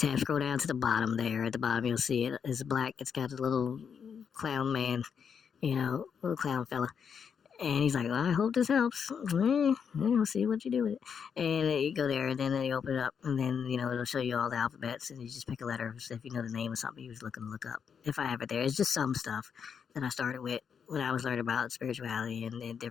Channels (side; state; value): right; quieter; 7.0 dB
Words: scroll down to the bottom there. At the bottom, you'll see it. It's black. It's got a little clown man, little clown fella. And he's like, well, I hope this helps. We'll see what you do with it. And you go there, and then you open it up, and then, it'll show you all the alphabets, and you just pick a letter. So if you know the name of something you was looking to look up. If I have it there. It's just some stuff that I started with when I was learning about spirituality and